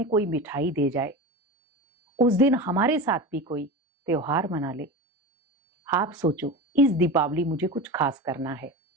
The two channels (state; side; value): normal; both; correlation 0.27